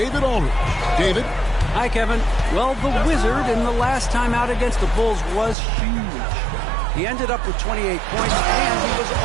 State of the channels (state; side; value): drops out; left; at 5.6 s